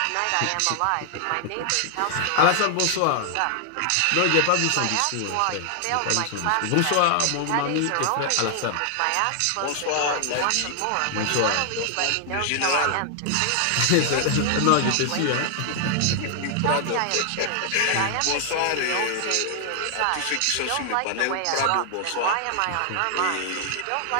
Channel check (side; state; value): both; different; correlation 0.00